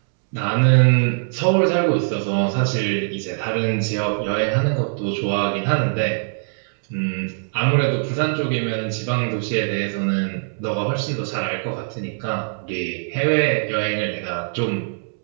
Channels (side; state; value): left; silent; 64 dB below the other